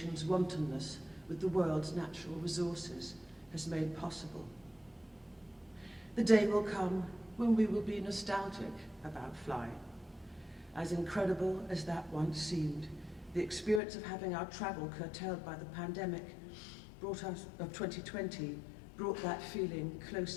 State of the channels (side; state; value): right; drops out; at 13.8 s